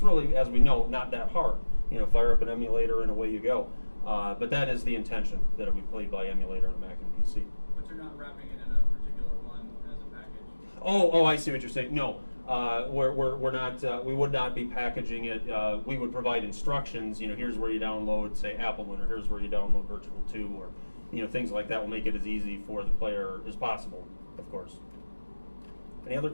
really, as we know, not that hard. Fire up an emulator and away you go. But that is the intention, that it be played by emulator on a Mac and PC. But you're not wrapping it in a particular one as a package? Oh, I see what you're saying. No, we're not. We would not be packaging it. We would provide instructions. Here's where you download, say, Appleman, or here's where you download Virtual 2, or things like that will make it as easy for the player as possible, of course. Any other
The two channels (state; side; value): inverted; both; correlation -1.00